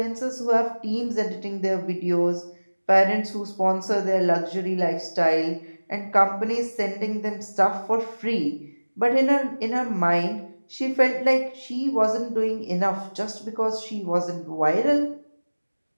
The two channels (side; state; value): both; inverted; correlation -1.00